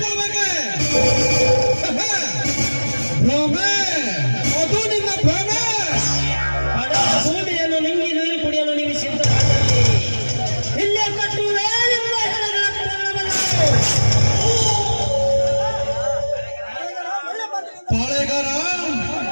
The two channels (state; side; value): inverted; both; correlation -1.00